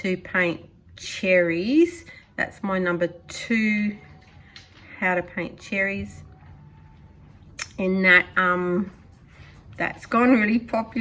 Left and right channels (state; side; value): identical; both; correlation 1.00